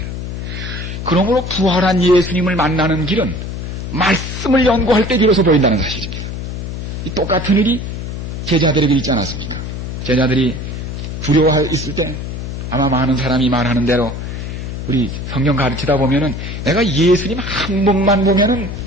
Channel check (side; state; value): left; noise; hum, 6 dB below the sound